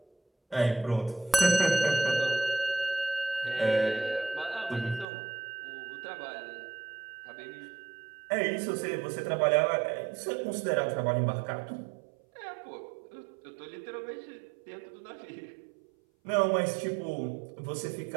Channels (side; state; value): left; drops out; at 5.1 s